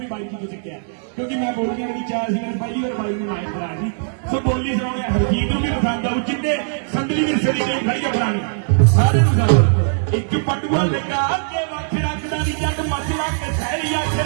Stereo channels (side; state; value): left; silent; digital silence